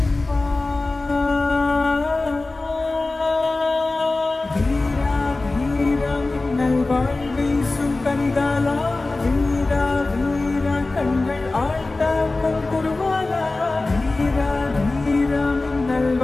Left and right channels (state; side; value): quieter; right; 3.2 dB